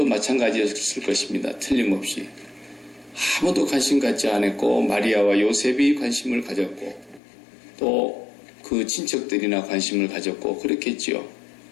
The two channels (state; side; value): drops out; right; at 7.2 s